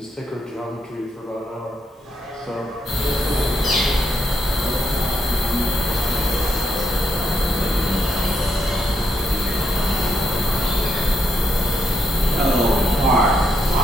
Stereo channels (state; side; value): normal; both; correlation 0.78